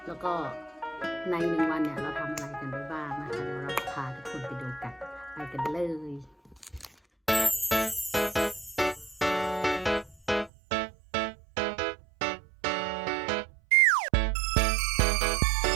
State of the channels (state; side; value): drops out; left; at 10.5 s